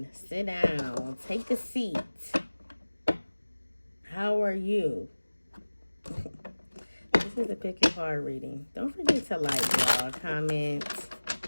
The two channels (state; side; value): inverted; both; correlation -1.00